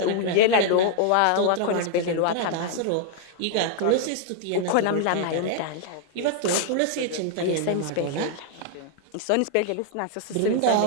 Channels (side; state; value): both; different; correlation 0.00